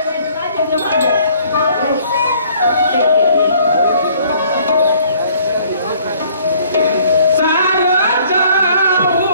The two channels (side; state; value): both; inverted; correlation -0.60